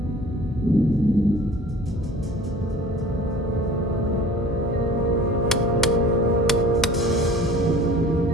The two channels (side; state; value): both; normal; correlation 0.45